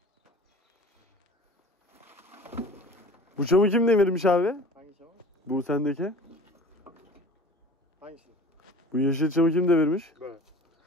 Bu çamı kim devirmiş abi? Hangi çamur? Bu sendeki. Hangisi? Bu yeşil çamı kim devirmiş? Böyle.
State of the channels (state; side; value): normal; both; correlation 0.42